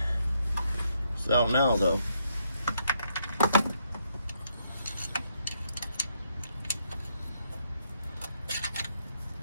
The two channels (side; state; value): both; inverted; correlation -0.75